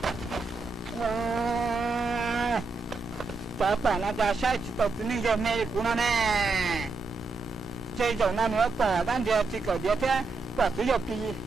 早把那家下去到这里就没顾了呢。这种那你要把咱这个这天把只有比，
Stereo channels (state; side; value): quieter; left; 3.9 dB